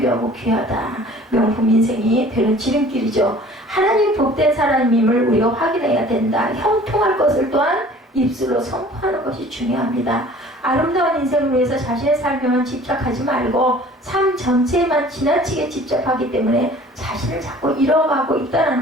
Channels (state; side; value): normal; both; correlation 0.49